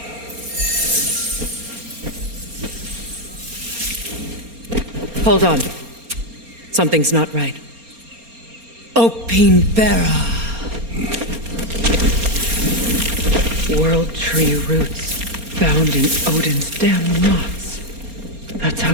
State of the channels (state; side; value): late; left; 4.3 ms